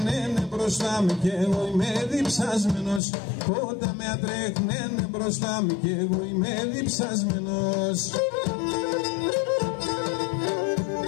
μπροστά μου και εγώ είμαι διψασμένος πότα με ατρέχνene μπροστά μου και εγώ είμαι διψασμένος.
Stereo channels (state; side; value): drops out; right; at 3.0 s